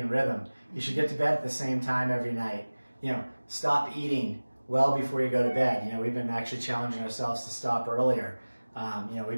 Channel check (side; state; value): both; inverted; correlation -1.00